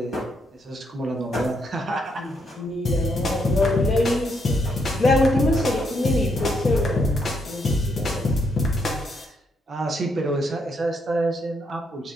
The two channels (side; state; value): both; normal; correlation 0.75